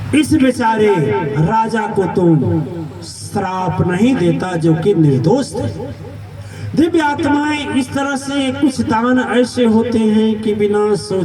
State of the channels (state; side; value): identical; both; correlation 1.00